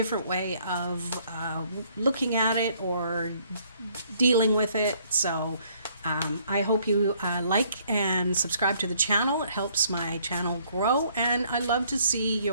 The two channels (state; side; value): inverted; both; correlation -0.64